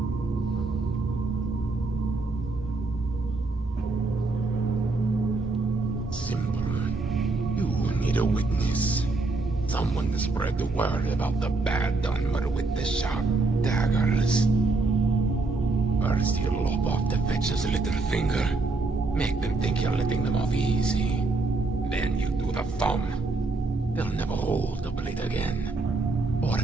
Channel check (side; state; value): left; quieter; 3.4 dB